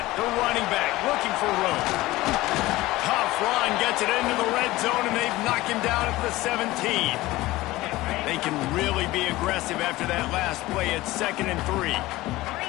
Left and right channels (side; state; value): right; quieter; 18.3 dB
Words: the running back looking for room. Tough run, gets it into the red zone, and they've knocked him down at the 17. They can really be aggressive after that last play at 2nd and 3.